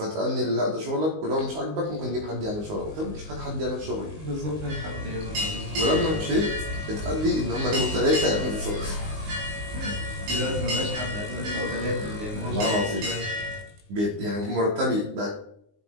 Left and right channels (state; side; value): late; left; 19 ms